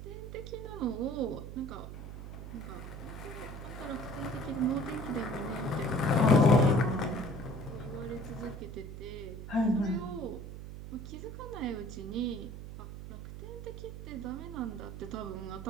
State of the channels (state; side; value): noise; right; hum, 9 dB below the sound